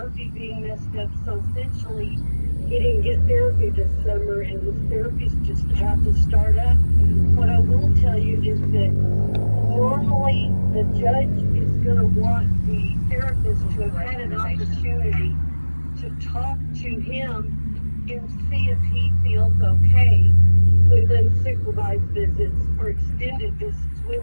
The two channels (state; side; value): inverted; both; correlation -1.00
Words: being messed up. So essentially, he didn't get therapy this summer, and his therapy's just about to start up. What I will tell you is that normally the judge is going to want the therapist to have had an opportunity to talk to him and see if he feels okay with unsupervised visits or extended visits